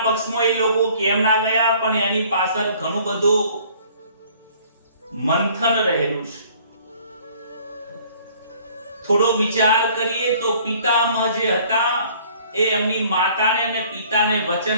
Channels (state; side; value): inverted; both; correlation -0.56